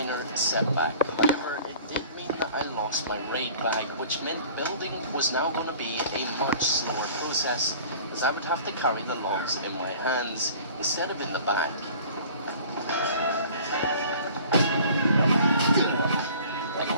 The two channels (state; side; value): inverted; both; correlation -0.47